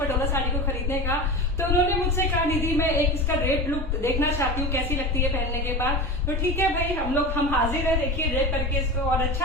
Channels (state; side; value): normal; both; correlation 0.28